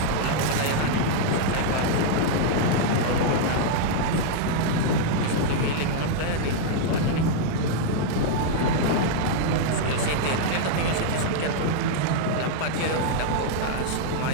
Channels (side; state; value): both; different; correlation -0.01